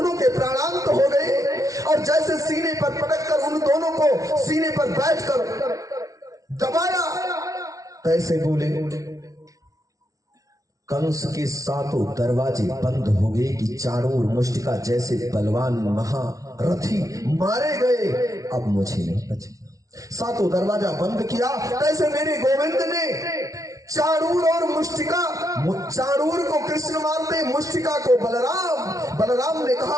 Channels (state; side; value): late; left; 0.17 ms